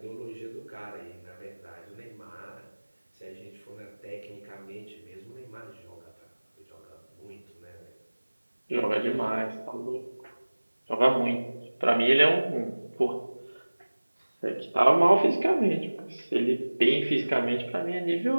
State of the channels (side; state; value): both; inverted; correlation -1.00